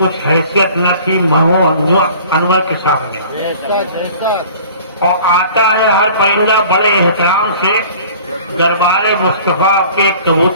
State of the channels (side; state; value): both; inverted; correlation -0.47